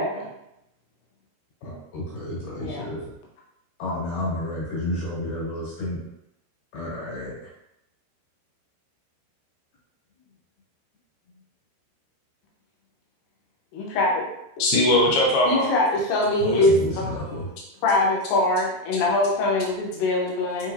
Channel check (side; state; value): right; late; 13 ms